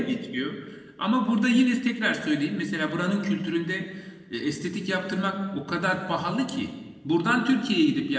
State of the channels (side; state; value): both; identical; correlation 1.00